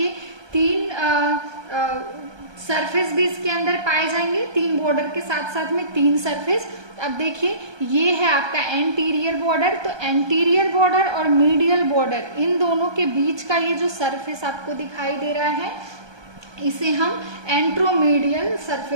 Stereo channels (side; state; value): left; late; 1.2 ms